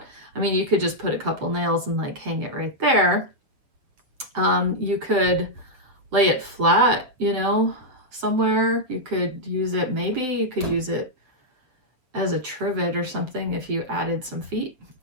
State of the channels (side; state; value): left; late; 7.5 ms